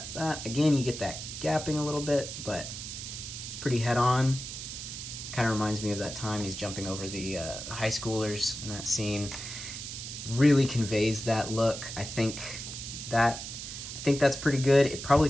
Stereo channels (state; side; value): noise; right; hiss, 8 dB below the sound